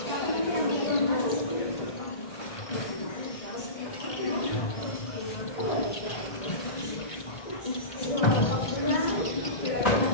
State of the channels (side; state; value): right; late; 1.6 ms